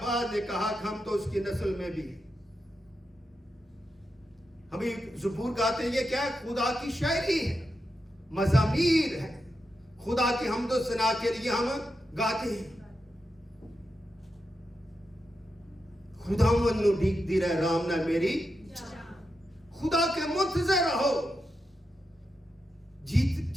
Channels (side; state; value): both; normal; correlation 0.87